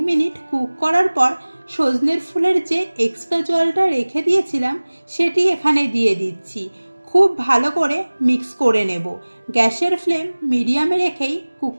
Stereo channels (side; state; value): both; inverted; correlation -1.00